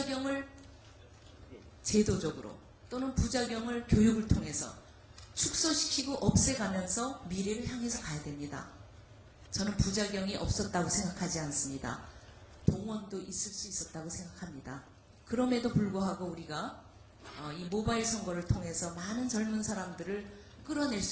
제도적으로 또는 부작용을 교육을 통해서 축소시키고 없애가면서 미래를 향해서 가야 됩니다. 저는 부작용이 없었다고 생각하지 않습니다. 동원도 있을 수 있었다고 생각합니다. 그럼에도 불구하고 우리가 이 모바일 선거를 통해서 많은 젊은 사람들을 끌어낼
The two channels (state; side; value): identical; both; correlation 1.00